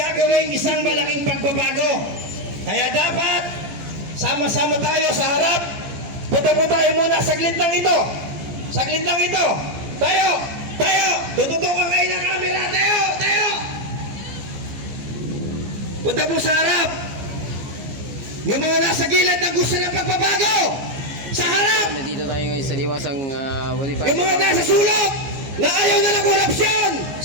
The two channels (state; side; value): late; left; 15 ms